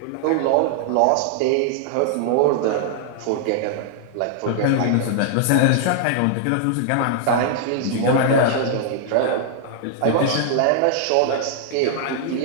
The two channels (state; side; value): different; both; correlation -0.01